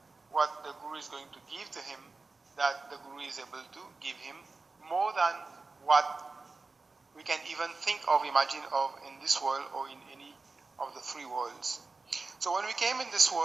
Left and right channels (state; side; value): quieter; left; 3.8 dB